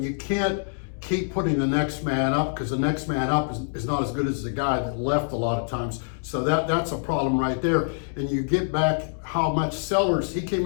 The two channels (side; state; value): right; silent; digital silence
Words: you can't keep putting the next man up because the next man up is not as good as the guy that left a lot of times. So that's a problem right there. And you get back how much Sellers, he